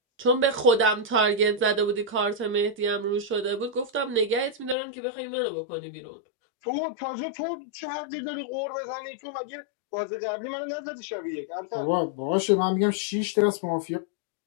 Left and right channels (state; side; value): drops out; right; at 4.8 s